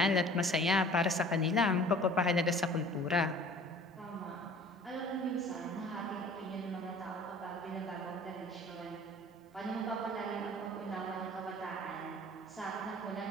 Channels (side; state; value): both; normal; correlation 0.48